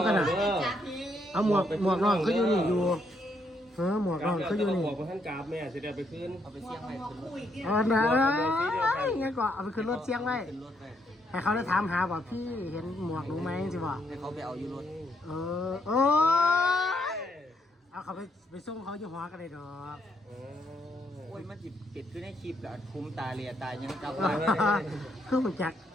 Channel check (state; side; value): normal; both; correlation 0.74